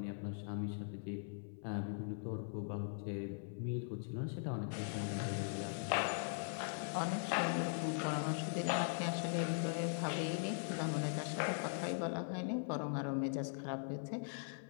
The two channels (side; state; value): right; silent; 50 dB below the other